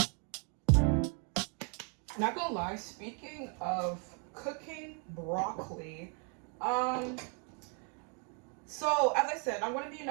Not gonna lie, speaking of cooking broccoli, um, so as I said, I'm gonna be in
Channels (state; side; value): quieter; left; 35.3 dB